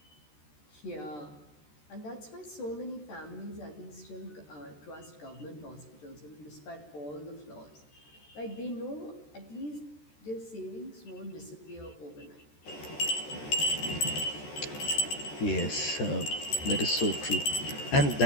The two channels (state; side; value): late; right; 14 ms